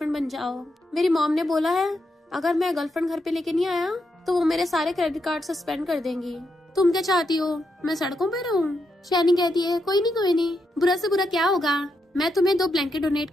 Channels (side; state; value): both; normal; correlation 0.82